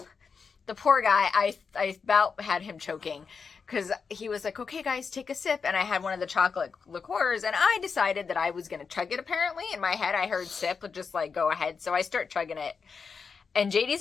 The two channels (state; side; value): quieter; right; 5.5 dB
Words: the poor guy, I about had him choking because he was like, okay, guys, take a sip. And I had one of the chocolate liqueurs and I decided that I was going to chug it. Apparently in my head, I heard sip, but just like, go ahead. So I start chugging it and